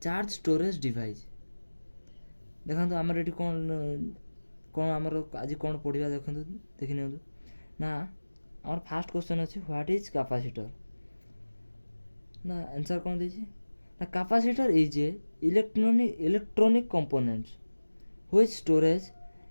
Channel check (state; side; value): inverted; both; correlation -1.00